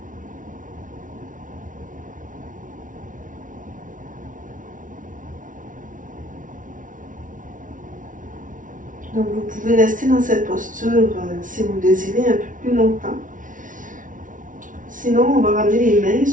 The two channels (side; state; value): left; late; 0.38 ms